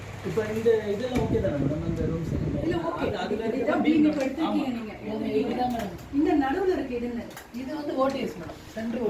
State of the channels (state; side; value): identical; both; correlation 1.00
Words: இப்போ இந்த இதெல்லாம் ஓகே தானே மேடம்? அந்த ரூம்ஸ் இல்லை ஓகே, இதுதான் பீம் இப்போ எடுத்துருக்கீங்க நீங்கள். இதுதான் மேடம். இந்த நடுவில் இருக்குது இது என்ன? இது வந்து ODS madam.